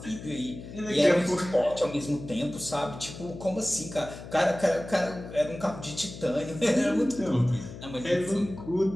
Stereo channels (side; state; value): left; noise; hum, 13 dB below the sound